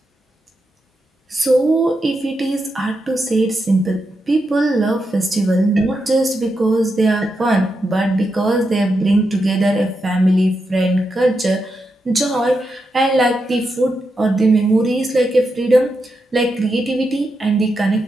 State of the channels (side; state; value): both; normal; correlation 0.85